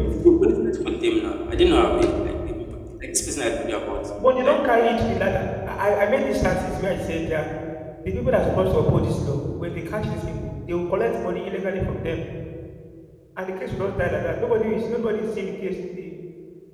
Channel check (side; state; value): both; identical; correlation 1.00